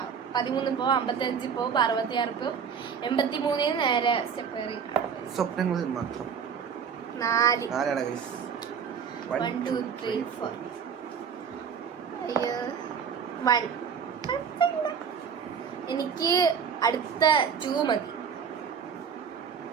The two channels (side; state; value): left; quieter; 6.9 dB